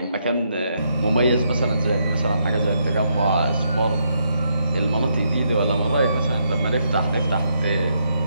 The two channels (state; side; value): inverted; both; correlation -0.77